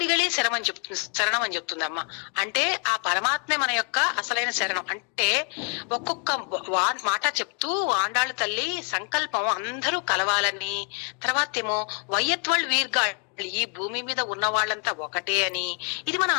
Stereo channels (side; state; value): right; quieter; 37.3 dB